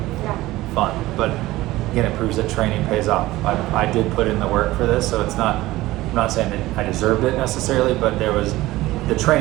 fun. But again, it proves that training pays off. I did put in the work for this, so it's not. I'm not saying that I deserved it necessarily, but there was the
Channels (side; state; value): left; quieter; 17.6 dB